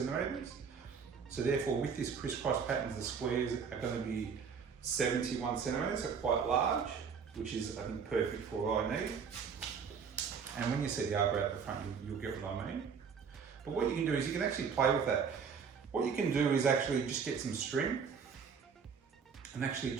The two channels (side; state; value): left; quieter; 6.3 dB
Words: So therefore with this crisscross patterns, the squares are going to be 71 centimeters, so quite large, which is I think perfect for what I need. And when you see the arbor at the front, you'll get what I mean. But what you can do is you can actually play with that. What you can do is actually just get some string and actually